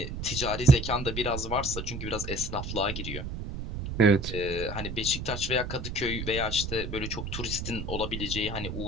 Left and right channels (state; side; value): noise; right; rumble, 6 dB below the sound